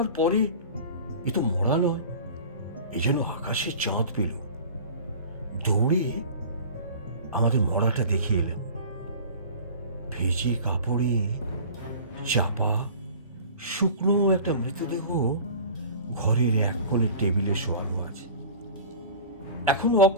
পরে এ তো মরা নয়, এ যেন আকাশে চাঁদ পেল। দৌড়ে আমাদের মরাটা দেখে এলাম। ভেজে কাপড়ে চাপা শুকনো একটা মৃতদেহ ঘরের এক কোণে টেবিলে শোয়ানো আছে, এখনো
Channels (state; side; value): inverted; both; correlation -0.40